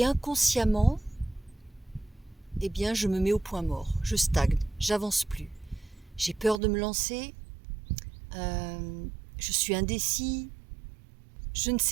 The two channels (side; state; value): left; drops out; at 6.6 s